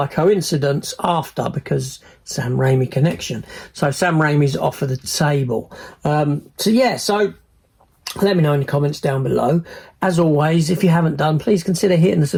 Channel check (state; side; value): identical; both; correlation 1.00